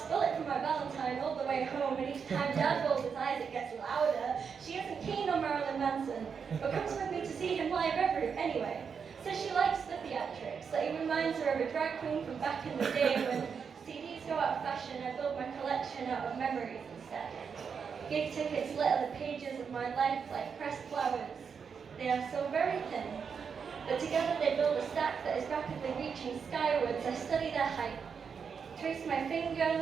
Bullet for my Valentine all the way home, and each time Dad rolls his eyes, it gets louder. She isn't keen on Marilyn Manson, but comes with me to see him live anyway. Says she likes the theatrics, that he reminds her of a drag queen from back in the day when CDs go out of fashion. I build my collection out of memories instead. Gig tickets litter the pages of my life like pressed flowers. They are so very thin, but together they build a stack that is rapidly reaching skywards. I study their height, trace my finger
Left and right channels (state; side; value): quieter; left; 6.3 dB